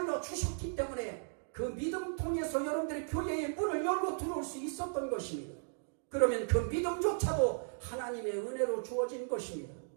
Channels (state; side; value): silent; left; digital silence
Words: 주셨기 때문에 그 믿음 통해서 여러분들의 교회의 문을 열고 들어올 수 있었던 것입니다. 그러면 그 믿음조차도 하나님의 은혜로 주어진 것입니다.